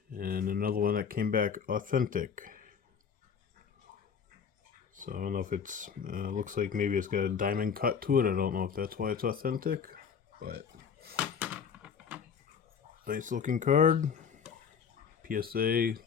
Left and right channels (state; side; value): quieter; right; 6.8 dB